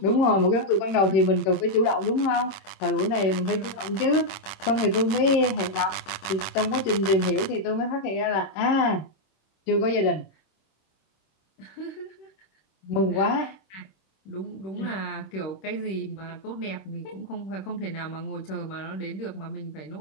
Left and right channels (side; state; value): right; late; 26 ms